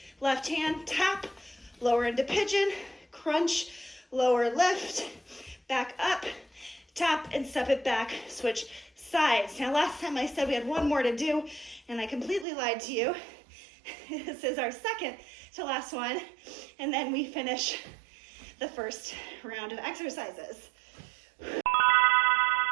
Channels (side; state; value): left; drops out; at 12.5 s